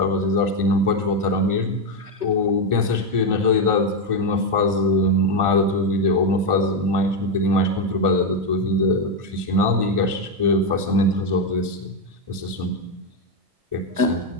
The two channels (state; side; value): late; left; 1.4 ms